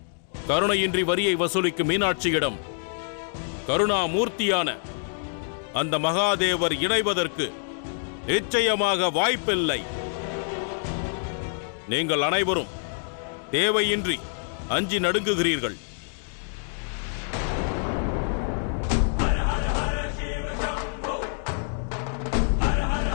கருணையின்றி வரியை வசூலிக்கும் மீனாட்சியிடம் கருணாமூர்த்தியான அந்த மகாதேவர் இணைவதற்கு நிச்சயமாக வாய்ப்பில்லை. நீங்கள் அனைவரும் தேவையின்றி அஞ்சி நடுங்குகிறீர்கள்.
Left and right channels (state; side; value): silent; right; digital silence